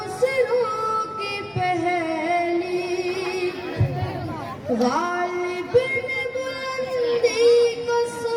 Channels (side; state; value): both; identical; correlation 1.00